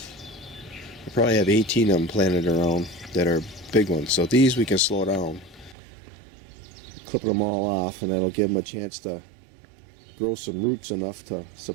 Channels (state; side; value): drops out; left; at 5.8 s